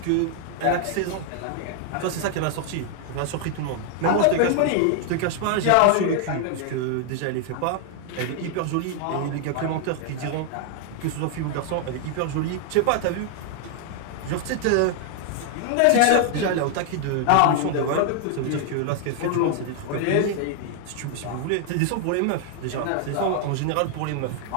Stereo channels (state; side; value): different; both; correlation 0.00